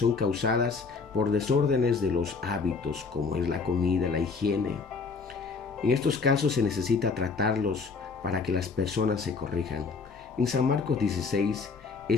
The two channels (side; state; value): right; quieter; 4.7 dB